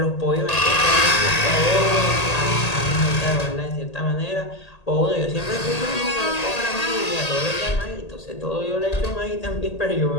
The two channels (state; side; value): late; right; 1.8 ms